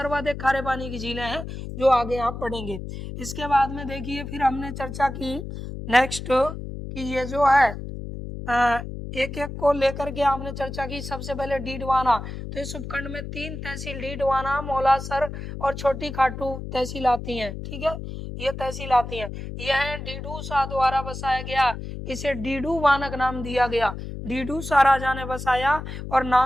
खारे पानी की झीलें हैं जो आगे आप पढ़ेंगे। इसके बाद में देखिए, फिर हमने चर्चा की नेक्स्ट कि ये जो है एक एक को लेकर के आपने चर्चा की। सबसे पहले डीडवाना। तो इस उपखंड में 3 तहसील डीडवाना, मौलासर और छोटी खाटू तहसील आती हैं। ठीक है, ये तहसील आती है। यह डीडू शाह द्वारा बसाया गया, इसे डीडू वानक नाम दिया गया। डीडू शाह राजा ने बसाया और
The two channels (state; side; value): noise; left; hum, 8 dB below the sound